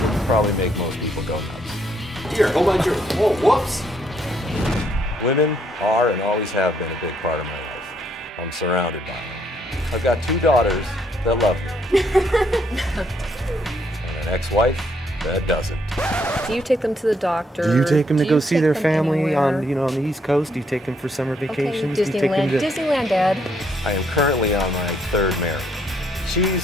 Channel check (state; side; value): normal; both; correlation 0.71